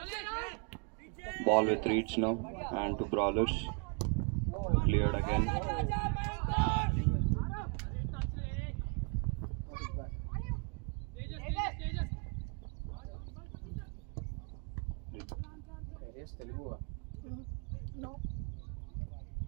Ball with Reeds now. And to Brawlers. Cleared again. Telugu No.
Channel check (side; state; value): left; quieter; 36.0 dB